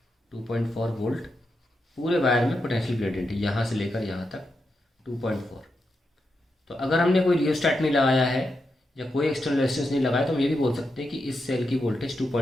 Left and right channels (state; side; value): normal; both; correlation 0.86